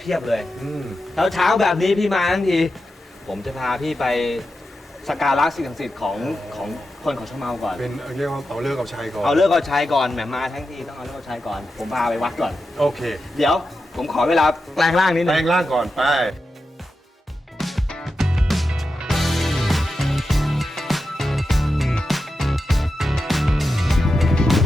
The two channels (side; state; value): both; normal; correlation 0.90